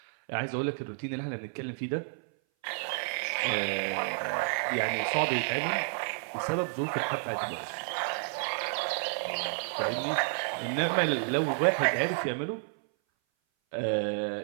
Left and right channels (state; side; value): silent; left; 57 dB below the other